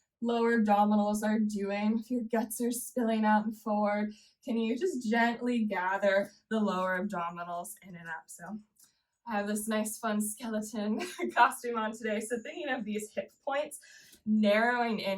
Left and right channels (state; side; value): identical; both; correlation 1.00